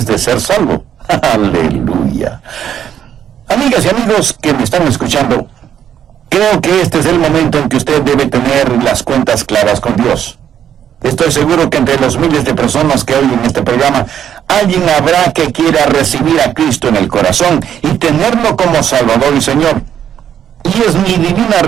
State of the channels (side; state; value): left; quieter; 9.5 dB